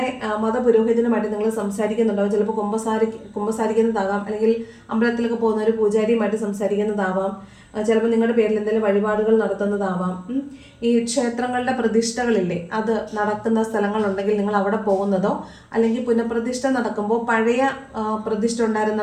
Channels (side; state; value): both; identical; correlation 1.00